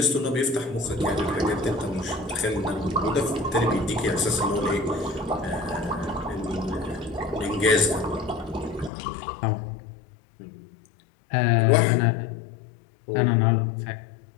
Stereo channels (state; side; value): drops out; right; at 8.9 s